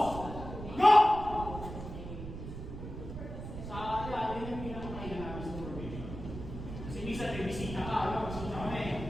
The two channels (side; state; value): right; noise; rumble, 9 dB below the sound